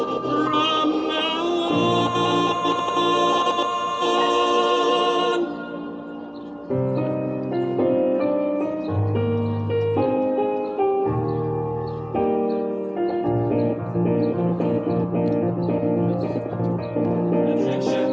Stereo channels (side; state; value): both; identical; correlation 1.00